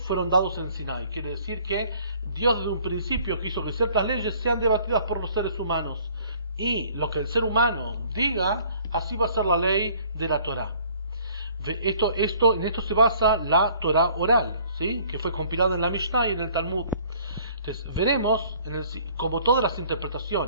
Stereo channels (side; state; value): both; inverted; correlation -0.56